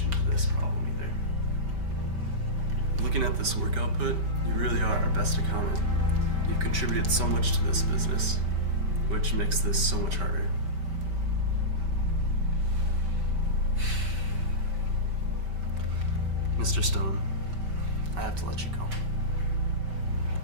to this problem either. Looking at this work output, you really are our best accountant. You've contributed so much to this business, which makes this so much harder. Mr. Stone, I have to let you go.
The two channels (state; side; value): late; left; 5.2 ms